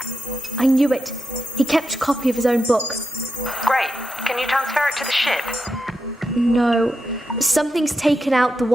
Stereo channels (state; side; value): normal; both; correlation 0.86